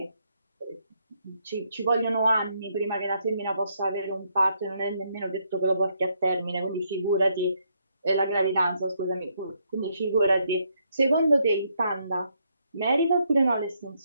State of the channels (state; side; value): inverted; both; correlation -0.75